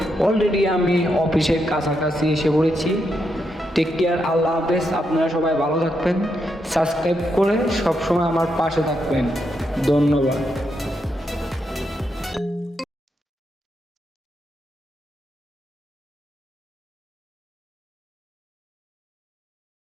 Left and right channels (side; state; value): both; normal; correlation 0.82